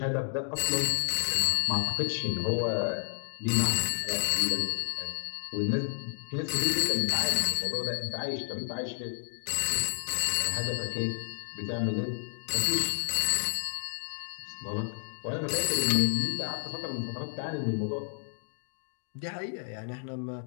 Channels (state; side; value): silent; right; digital silence